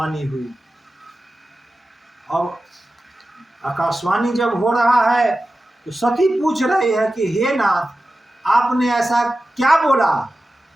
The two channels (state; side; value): normal; both; correlation 0.94